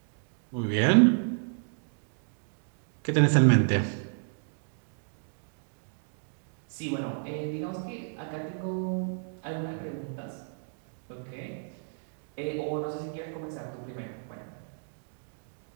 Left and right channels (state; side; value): silent; left; digital silence